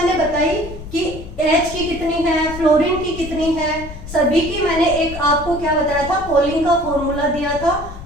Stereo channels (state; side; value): noise; left; rumble, 12 dB below the sound